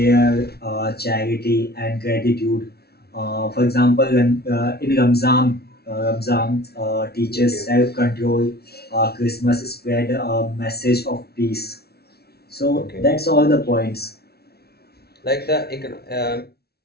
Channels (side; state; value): right; late; 0.46 ms